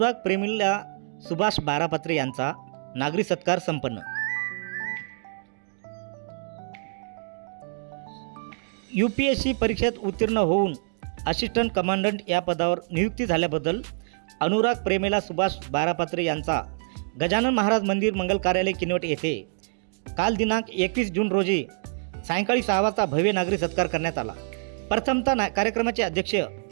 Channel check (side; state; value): left; silent; digital silence